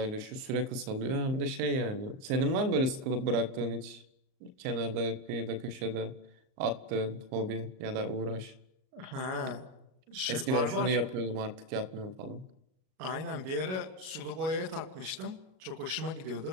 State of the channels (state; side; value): late; left; 38 ms